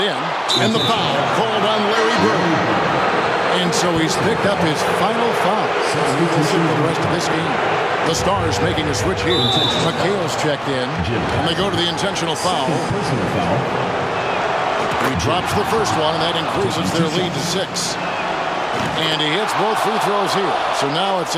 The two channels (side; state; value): both; identical; correlation 1.00